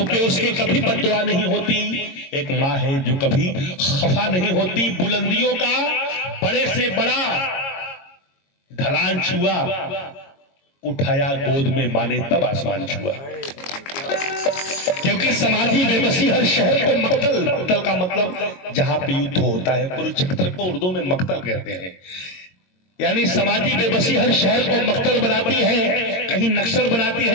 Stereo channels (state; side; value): late; right; 22 ms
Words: पे उसके कभी बद्दुआ नहीं होती, एक माँ है जो कभी खफा नहीं होती। बुलंदियों का बड़े से बड़ा ढलान छुआ, उठाया गोद में माँ ने तब आसमान छुआ। क्योंकि समाजी बेबसी हर शहर को मक्तल, मक्तल का मतलब जहां पे युद्ध होता है, कुरुक्षेत्र को उर्दू में मक्तल कहते हैं। यानी समाजी बेबसी हर शहर को मक्तल बनाती है, कहीं नक्सल बनाती